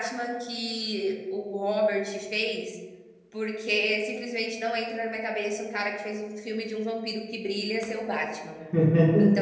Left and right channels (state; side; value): identical; both; correlation 1.00